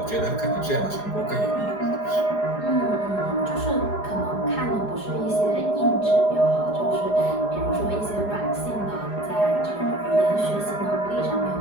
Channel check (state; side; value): late; right; 4.9 ms